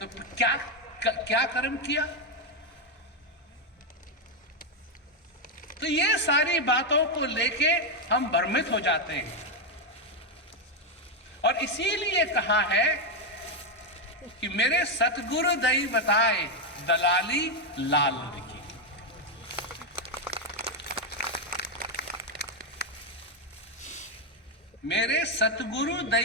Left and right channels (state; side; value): normal; both; correlation 0.04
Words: क्या कर्म किया? तो ये सारी बातों को लेके हम भ्रमित हो जाते हैं, और इसीलिए कहा है कि मेरे सतगुरु दई बताए दलाली लाल की। मेरे सतगुरु